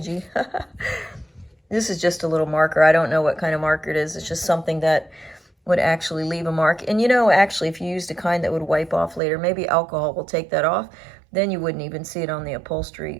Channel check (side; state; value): left; drops out; at 9.2 s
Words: This is just a little marker. I don't know what kind of marker it is. It's just something that would actually leave a mark. And you know, actually, if you used a kind that would wipe off later, maybe alcohol will take that off, then you wouldn't even see it on the